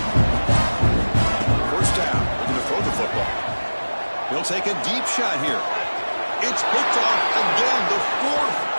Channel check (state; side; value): inverted; both; correlation -1.00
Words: 1st down. Looking to throw the football. He'll take a deep shot here. It's picked off again, the 4th